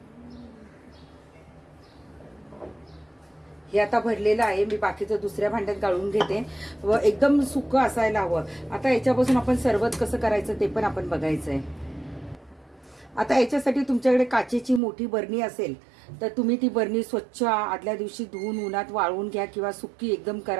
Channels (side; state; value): left; drops out; at 14.8 s